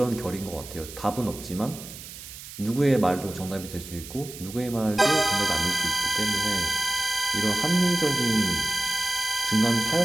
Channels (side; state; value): right; noise; hiss, 14 dB below the sound